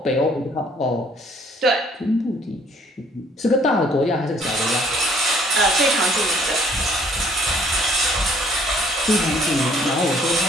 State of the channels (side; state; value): both; normal; correlation 0.60